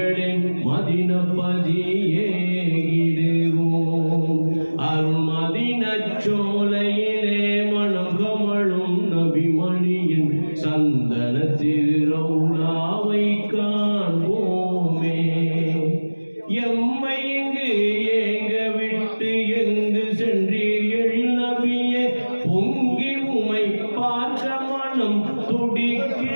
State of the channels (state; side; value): inverted; both; correlation -1.00